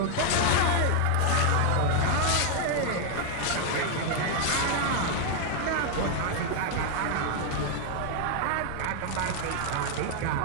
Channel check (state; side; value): different; both; correlation 0.00